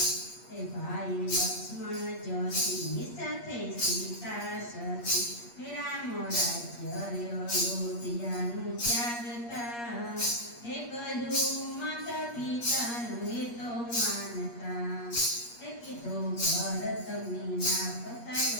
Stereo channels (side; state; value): right; late; 8.5 ms